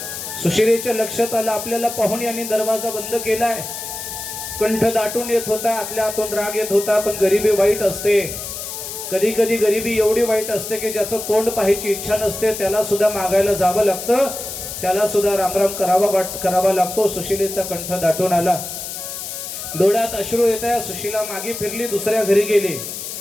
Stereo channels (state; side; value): noise; left; hiss, 8 dB below the sound